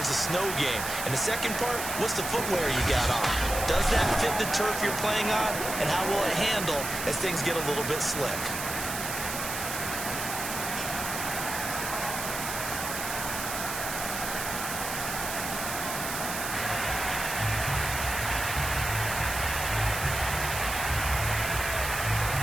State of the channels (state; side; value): noise; right; hiss, 5 dB below the sound